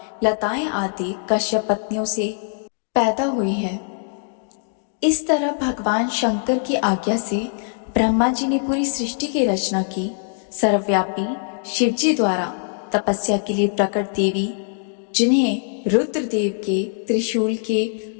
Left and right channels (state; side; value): silent; right; 63 dB below the other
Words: लताएं आदि कश्यप पत्नियों से पैदा हुई है। इस तरह भगवान शंकर की आज्ञा से ब्रह्मा जी ने पूरी सृष्टि की रचना की। सर्वव्यापी शिव जी द्वारा तपस्या के लिए प्रकट देवी, जिन्हें रुद्रदेव के त्रिशूल के